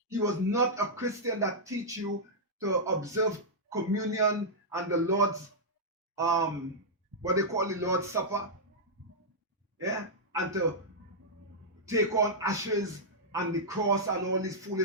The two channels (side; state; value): both; normal; correlation -0.09